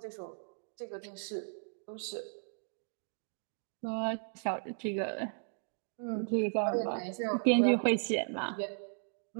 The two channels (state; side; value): silent; left; digital silence